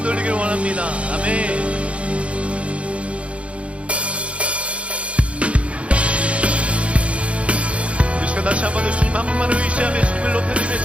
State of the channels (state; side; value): late; left; 0.062 ms